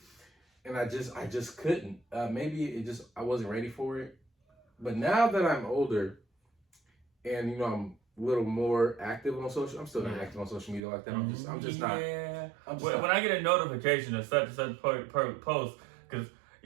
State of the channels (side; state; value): left; drops out; at 10.8 s